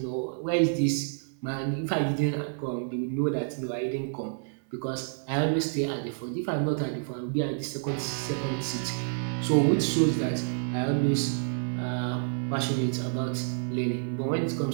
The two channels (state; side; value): silent; left; 59 dB below the other